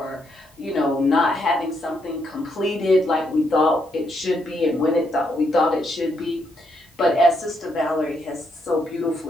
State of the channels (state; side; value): normal; both; correlation 0.77